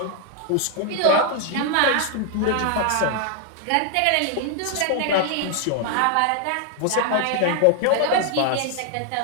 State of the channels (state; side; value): different; both; correlation 0.00